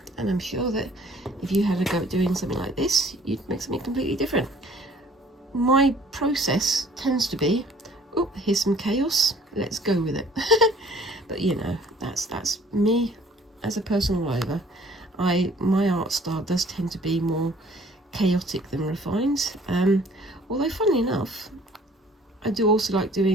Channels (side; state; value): both; normal; correlation 0.55